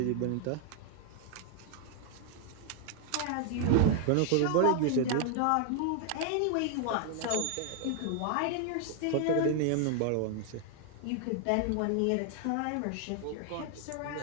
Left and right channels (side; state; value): both; different; correlation 0.00